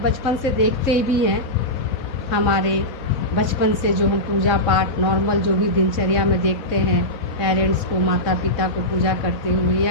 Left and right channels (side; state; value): right; late; 3.7 ms